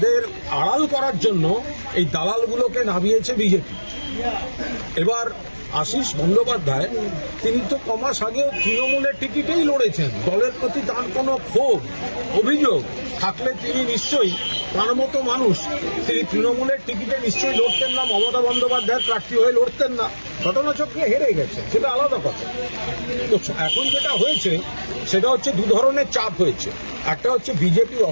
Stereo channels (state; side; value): inverted; both; correlation -1.00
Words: আড়াল করার জন্য এই দালালগুলোকে নামিয়েছে বিজেপি। এবার আশিস বন্দ্যোপাধ্যায় তিনি তো কমাস আগেও তৃণমূলের টিকিটেই লড়েছেন। দলের প্রতি তার কোনো ক্ষোভ অভিযোগ থাকলে তিনি নিশ্চয়ই, তার মতো মানুষ, তিনি তৃণমূলের টিকিটে নিশ্চয়ই লড়তেন না, মমতা বন্দ্যোপাধ্যায়ের প্রার্থী হয়ে লড়তেন না। ঘটনাচক্রে হেরে গেছে, সেটা আলাদা কথা। তো এখন যেটা হয়েছে সেটা হচ্ছে দু ধরনের চাপ হয়েছে। একটা হচ্ছে বিজেপির